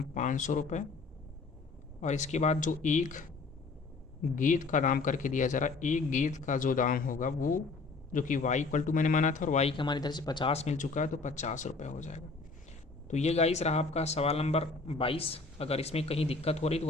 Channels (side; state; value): right; quieter; 4.0 dB